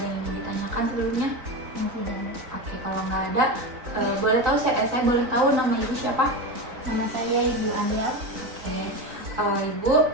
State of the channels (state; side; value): late; left; 3.9 ms